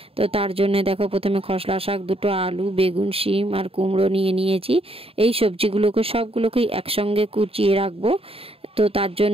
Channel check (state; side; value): late; left; 0.27 ms